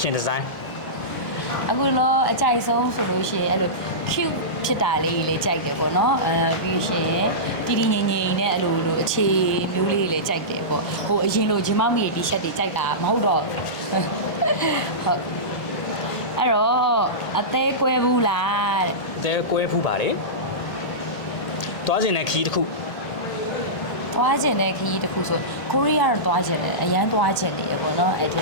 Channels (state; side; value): late; right; 1.5 ms